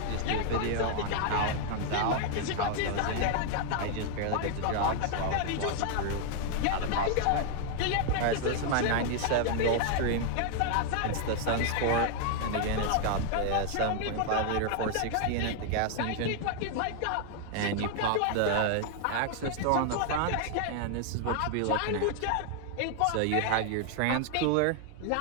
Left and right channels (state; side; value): different; both; correlation 0.00